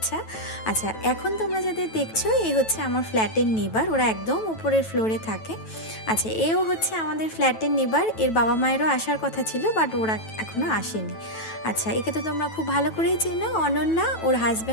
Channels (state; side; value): late; right; 9.1 ms